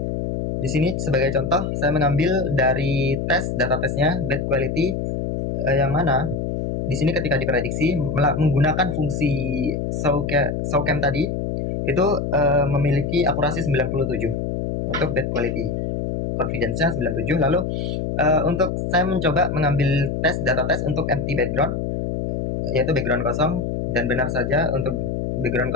Di sini sebagai contoh saya mengambil dari data tesnya bad quality, yang mana di sini ketika diprediksi menggunakan fungsi SOCAM tadi itu memiliki akurasi 97 untuk bad quality, confidence-nya 97. Lalu untuk saya mencoba mengambil data tes untuk empty background, yaitu background kosong, dan benar saja untuk background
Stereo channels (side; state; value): left; noise; hum, 2 dB below the sound